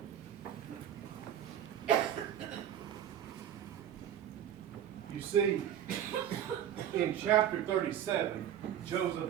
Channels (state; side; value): quieter; left; 10.2 dB